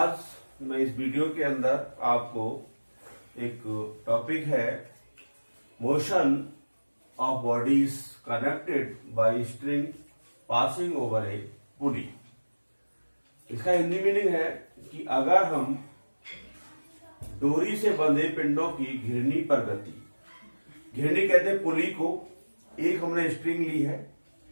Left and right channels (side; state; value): both; inverted; correlation -1.00